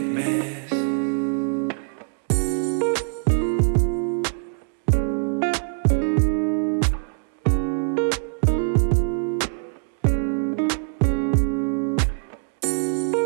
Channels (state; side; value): silent; left; digital silence